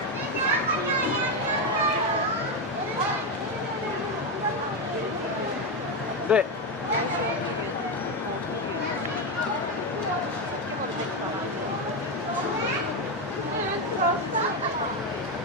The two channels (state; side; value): normal; both; correlation 0.09